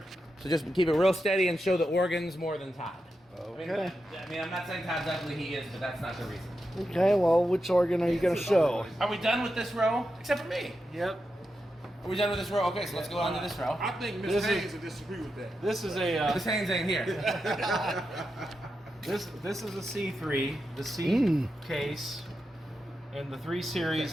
So just keep it real steady and show the organs more than Todd. Okay. I mean, I'm not saying Todd's ugly. He is, but that's not the reason. Okay, well, which organ are you going to show? Are we done with this row? Except for me. Yep. Are we done with this row? Okay, so let's go on to this row. I think Miss This is- Haynes would disagree with that. This is a This Haynes ain't here. this is a C3, the C case, and the 3 Series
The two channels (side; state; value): both; normal; correlation 0.88